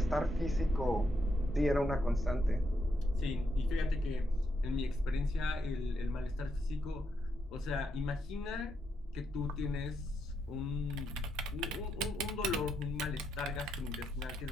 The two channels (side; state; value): both; normal; correlation 0.80